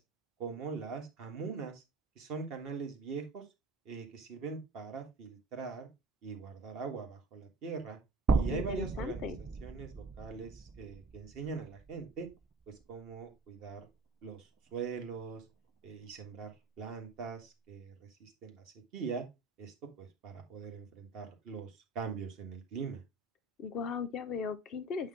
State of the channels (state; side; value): quieter; left; 3.0 dB